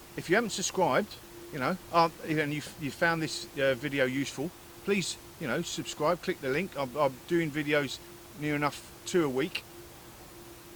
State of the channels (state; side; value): identical; both; correlation 1.00